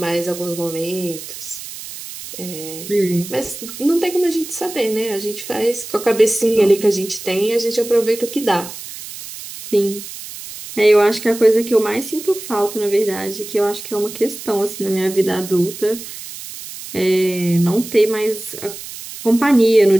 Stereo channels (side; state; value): right; noise; hiss, 12 dB below the sound